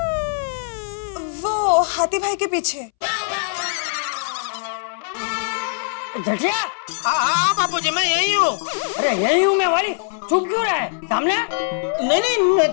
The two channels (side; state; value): right; silent; 65 dB below the other